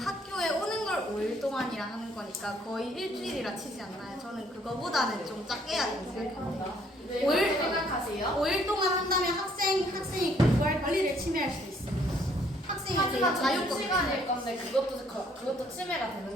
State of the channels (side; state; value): both; normal; correlation 0.64